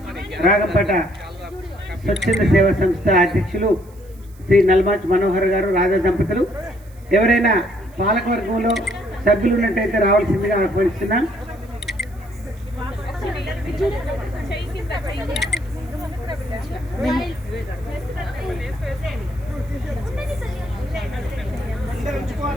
రాగంపేట స్వచ్ఛంద సేవా సంస్థ అధ్యక్షులు శ్రీ నల్మాచ్ మనోహర్ గారు, రాజా దంపతులు. ఎవరైనా పాలకవర్గంలో సభ్యులు ఉన్నట్టయితే రావాల్సిందిగా ఆహ్వానిస్తున్నాం.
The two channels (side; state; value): right; noise; hiss, 28 dB below the sound